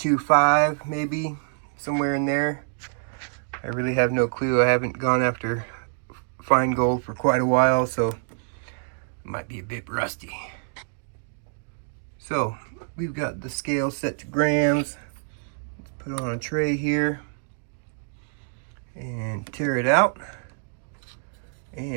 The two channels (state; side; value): silent; left; digital silence